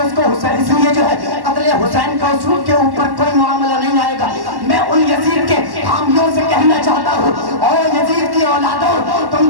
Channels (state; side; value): late; left; 1.1 ms